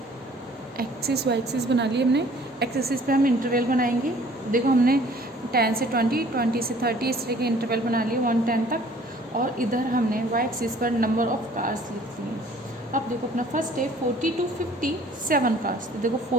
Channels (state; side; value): normal; both; correlation 0.54